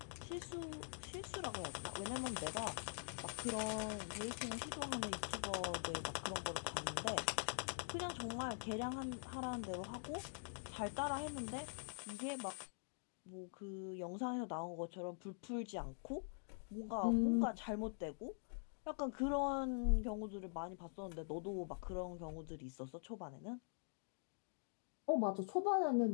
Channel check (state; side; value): silent; right; digital silence